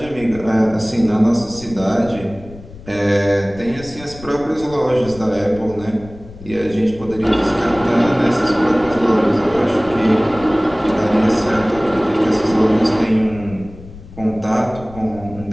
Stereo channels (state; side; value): noise; left; rumble, 17 dB below the sound